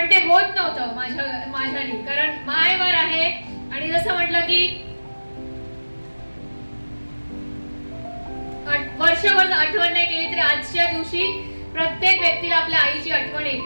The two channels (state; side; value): inverted; both; correlation -1.00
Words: ते होत नव्हतं माझ्यानी, कारण मायवार आहे. आणि जसं म्हटलं की वर्षभर आठवण नाही केली तरी आजच्या दिवशी प्रत्येक व्यक्तीला आपल्या आईची आठवण